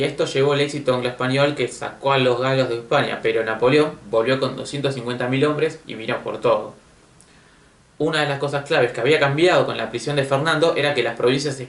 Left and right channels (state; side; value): identical; both; correlation 1.00